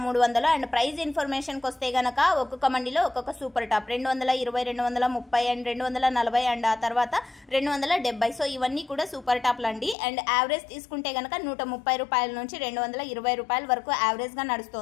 అండ్ ప్రైస్ ఇన్ఫర్మేషన్కి వస్తే కనుక ఒక్కొక్క మండిలో ఒక్కొక్క సూపర్ టాప్ 220, 230 అండ్ 240 అండ్ ఆ తర్వాత 270. సో ఇవన్నీ కూడా సూపర్ టాప్లు అండి. అండ్ యావరేజ్ తీసుకుంటే కనుక 130 రూపాయల నుంచి 220 రూపాయల వరకు యావరేజ్గా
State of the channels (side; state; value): right; drops out; at 10.0 s